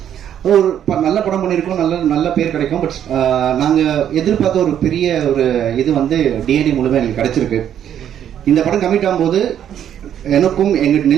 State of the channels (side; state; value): left; quieter; 9.9 dB